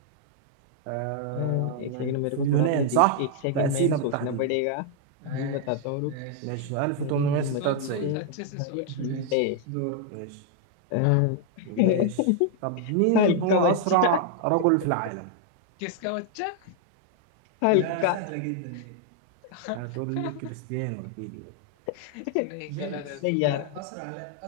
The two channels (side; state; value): both; different; correlation 0.00